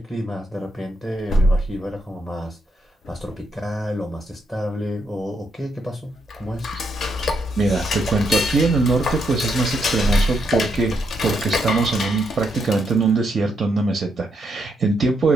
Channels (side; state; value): both; normal; correlation 0.78